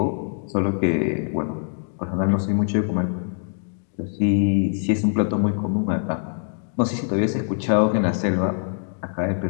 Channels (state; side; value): silent; right; 57 dB below the other